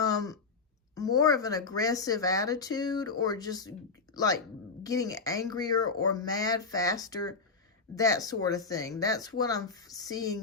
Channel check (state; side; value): quieter; right; 4.5 dB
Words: of an aggressive attitude, or just like getting angrier or mad faster, that sort of thing. That's what I'm